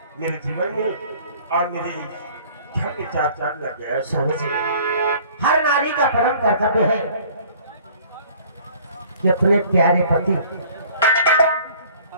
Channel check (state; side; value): inverted; both; correlation -0.52